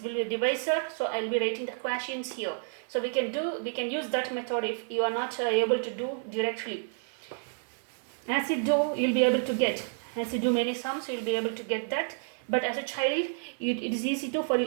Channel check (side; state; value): left; silent; 58 dB below the other